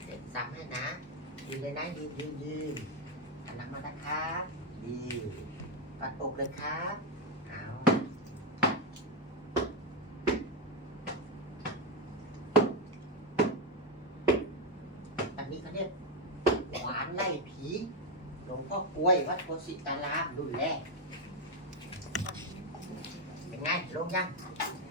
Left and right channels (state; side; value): normal; both; correlation 0.06